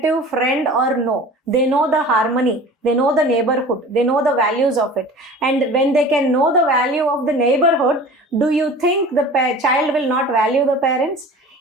friend or no. They know the harmony, they know the neighborhood, they know the values of it. And when they can know the value of the neighborhood, do you think the child will not value the parents?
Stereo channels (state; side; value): normal; both; correlation 0.40